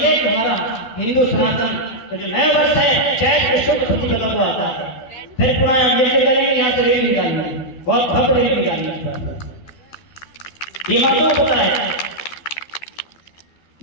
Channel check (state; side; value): late; right; 12 ms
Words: कि हमारा हिंदू सनातन तो जो नया वर्ष है, चैत के शुद्ध प्रतिपदा को आता है, फिर पुनः ये करेंगे, यहाँ से रेल निकालना, बहुत भव्य रेल निकालना। ये माताओं को पता है।